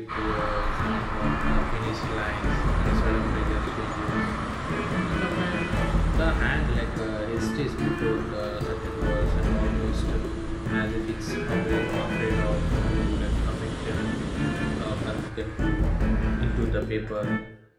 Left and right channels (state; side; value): identical; both; correlation 1.00